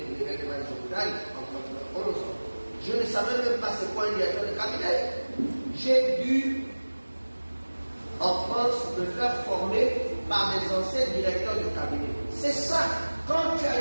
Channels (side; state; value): both; inverted; correlation -1.00